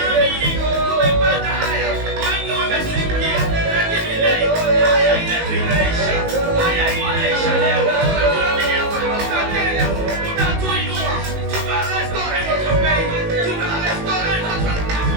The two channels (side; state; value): left; late; 19 ms